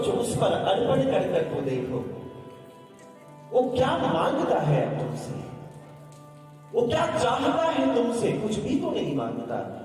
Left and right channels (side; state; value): both; identical; correlation 1.00